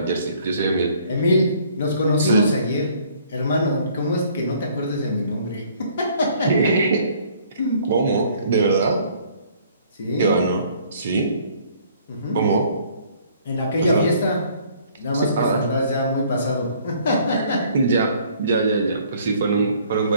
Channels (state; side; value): inverted; both; correlation -0.59